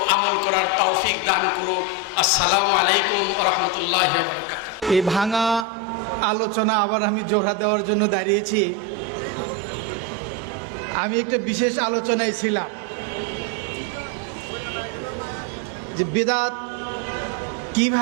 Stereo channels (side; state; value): left; drops out; at 5.7 s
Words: আমল করার তৌফিক দান করুন। আসসালামু আলাইকুম ওয়া রাহমাতুল্লাহি ওয়া বারাকাতুহু। এই ভাঙা আলোচনা আবার আমি জোড়া দেওয়ার জন্য দাঁড়িয়েছি। আমি একটা বিশেষ আলোচনায় ছিলাম যে বিদআত